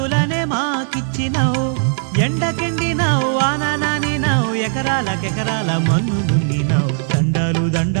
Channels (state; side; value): silent; left; digital silence